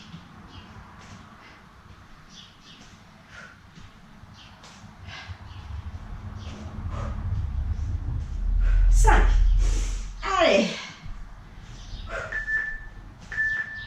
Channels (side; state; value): both; identical; correlation 1.00